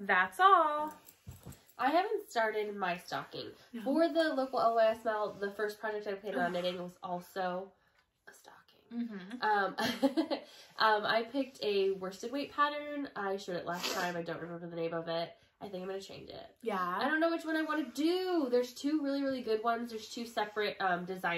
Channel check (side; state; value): both; identical; correlation 1.00